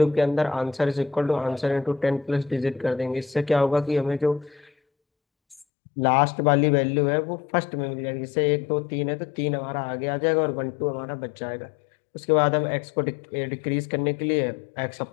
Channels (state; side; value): drops out; right; at 5.7 s